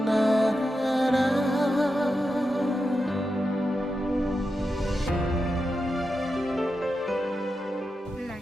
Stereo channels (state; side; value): normal; both; correlation 0.89